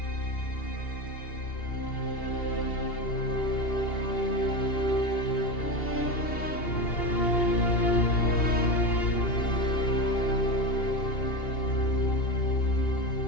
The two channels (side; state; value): right; late; 2.8 ms